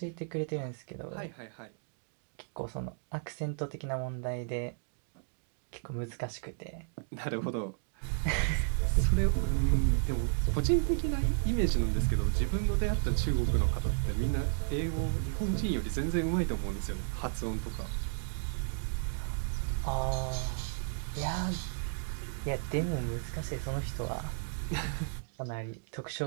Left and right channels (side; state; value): left; silent; digital silence